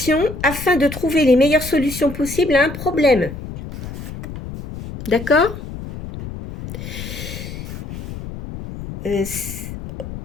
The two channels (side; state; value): left; noise; rumble, 10 dB below the sound